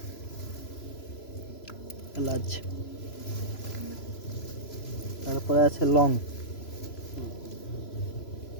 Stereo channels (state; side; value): late; right; 3.0 ms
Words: এলাচ, তারপরে আছে লং।